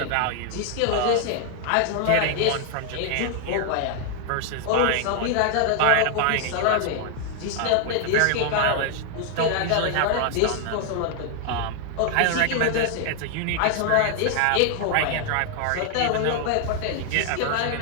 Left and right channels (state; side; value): different; both; correlation 0.00